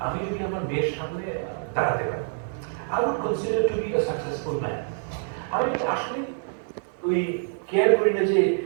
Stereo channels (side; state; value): left; silent; 61 dB below the other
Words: আমি যদি আমার মেয়ের সামনে দাঁড়াতে পারি, I would consider to be a successful man. আমি আসলে ওই কেয়ার করি না যে